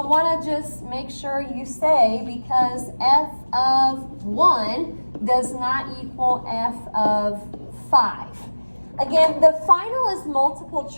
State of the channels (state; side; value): inverted; both; correlation -1.00